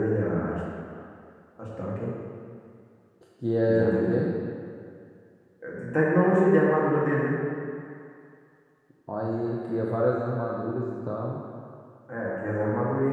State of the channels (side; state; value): both; identical; correlation 1.00